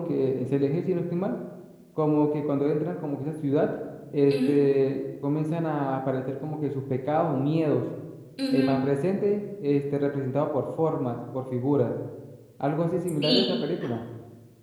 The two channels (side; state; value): both; identical; correlation 1.00